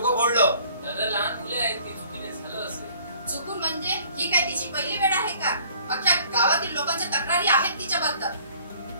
फोडलं. दादा लहान मुले आहेत ती चुकीने झालं असेल. चुकून म्हणजे ही काय तिची पहिली वेळ आहे का? अख्ख्या गावातील लोकांच्या तक्रारी आहेत तिच्याबद्दल.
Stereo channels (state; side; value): inverted; both; correlation -0.55